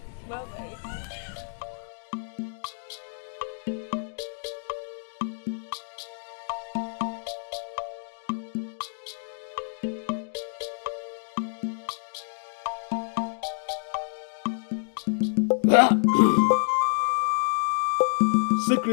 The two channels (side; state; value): right; silent; digital silence